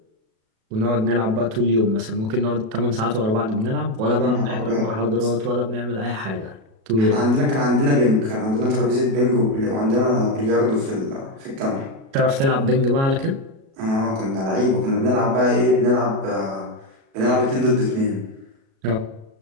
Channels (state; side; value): late; left; 37 ms